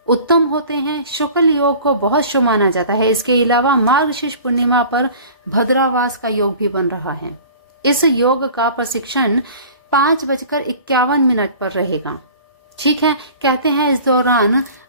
उत्तम होते हैं। शुक्ल योग को बहुत शुभ माना जाता है। इसके अलावा मार्गशीर्ष पूर्णिमा पर भद्रावास का योग भी बन रहा है। इस योग का प्रशिक्षण 5:51 पर रहेगा। ठीक है, कहते हैं इस दौरान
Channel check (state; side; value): inverted; both; correlation -0.44